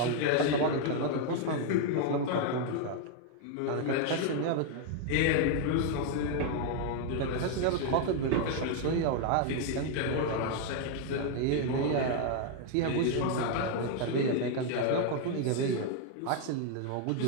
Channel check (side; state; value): both; different; correlation 0.00